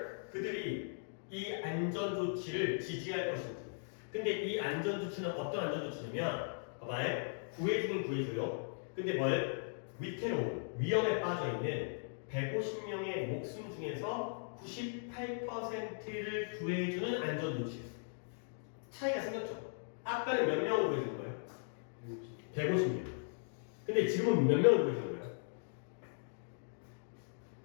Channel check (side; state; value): right; silent; digital silence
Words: 그들이 이 안전조치를 지지할 것인지. 근데 이 안전조치는 어떤 안전조치냐면 봐봐요. 구해주긴 구해줘요. 근데 뭘? 위태로운 위험에 빠져있는 150명의 목숨 중에서 98%를 구해주는 안전조치. 차이가 생겼죠. 아까는 몇 명을 구해주는 거예요? 150명. 근데 지금은 몇 명을 구해주는 거예요?